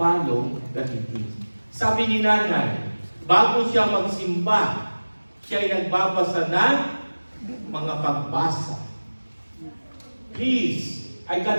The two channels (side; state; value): both; inverted; correlation -1.00